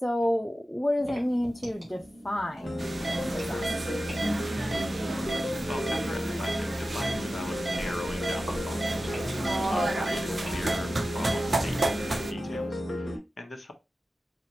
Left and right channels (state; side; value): normal; both; correlation 0.94